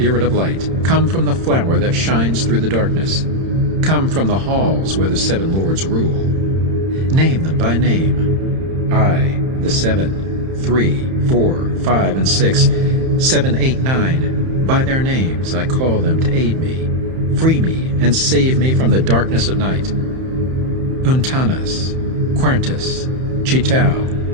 of light. Come from the flower that shines through the darkness. Come from the halls where the 7 lords rule. Name them by name. I, the 7, 3, 4, 5, and 6, 7, 8, 9. By their names I call them to aid me. Free me and save me from the darkness of night. Untanas, Quertus, Chitao,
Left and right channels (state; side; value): late; left; 31 ms